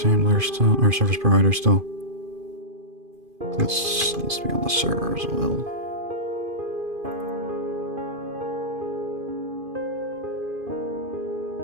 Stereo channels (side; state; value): left; late; 2.5 ms